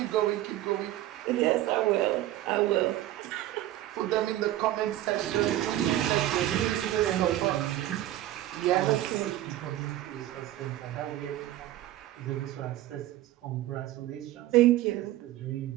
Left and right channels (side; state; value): left; quieter; 14.3 dB